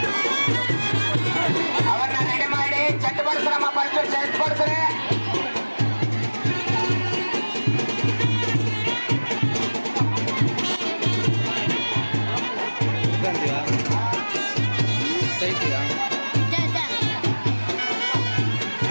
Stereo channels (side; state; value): both; inverted; correlation -1.00